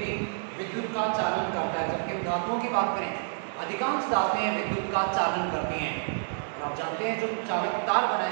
विद्युत का चालन करता है, जबकि धातुओं की बात करें अधिकांश धातुएं विद्युत का चालन करती हैं। आप जानते हैं जो चालक तार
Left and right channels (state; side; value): silent; left; digital silence